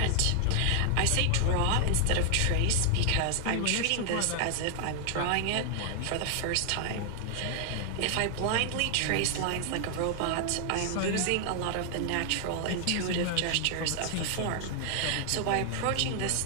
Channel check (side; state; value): both; different; correlation 0.00